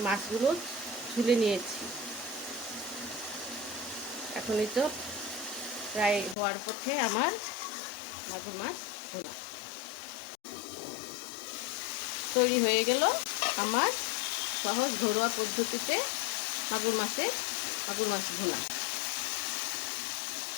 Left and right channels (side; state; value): right; drops out; at 6.4 s